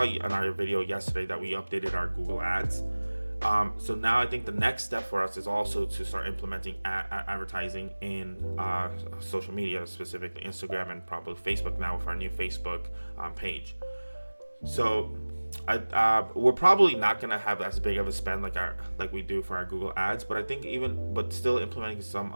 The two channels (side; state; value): both; inverted; correlation -1.00